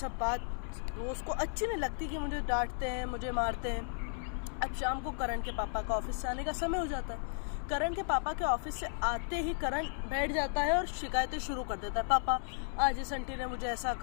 बात वो उसको अच्छी नहीं लगती कि मुझे डांटते हैं, मुझे मारते हैं। अब शाम को करण के पापा का ऑफिस से आने का समय हो जाता है। करण के पापा के ऑफिस से आते ही करण बैठ जाता है और शिकायतें शुरू कर देता है। पापा, आज इस आंटी ने मुझे ऐसा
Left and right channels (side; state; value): right; silent; 55 dB below the other